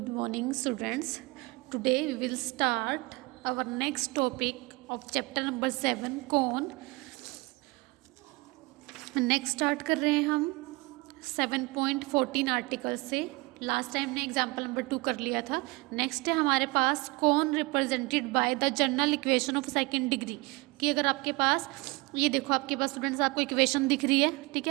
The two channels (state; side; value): quieter; left; 24.5 dB